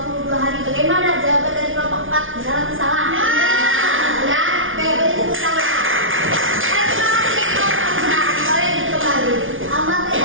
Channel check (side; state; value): left; late; 0.57 ms